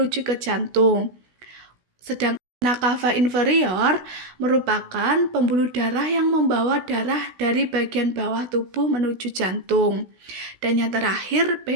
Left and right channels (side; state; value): left; late; 16 ms